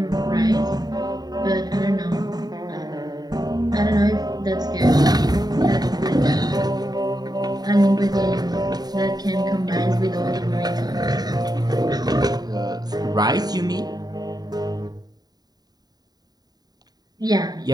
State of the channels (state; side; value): late; left; 0.19 ms